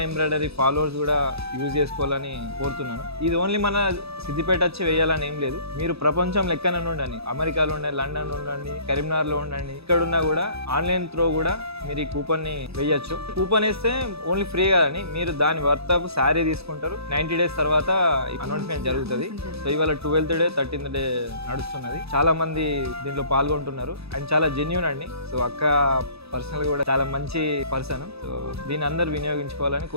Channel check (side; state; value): left; late; 0.78 ms